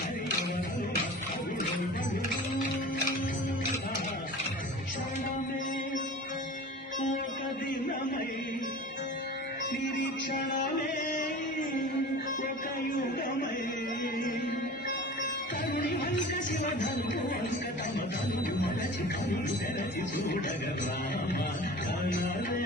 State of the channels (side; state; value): both; normal; correlation 0.38